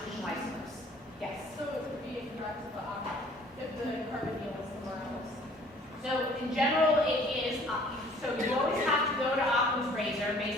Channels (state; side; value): normal; both; correlation 0.54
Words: isomers. Yes? So it would be incorrect if the carbonyl was somewhere else. So in general, it is, so you always have to go to Occam's razor